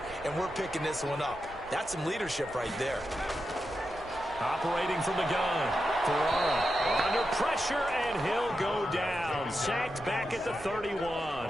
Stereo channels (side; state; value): right; noise; rumble, 19 dB below the sound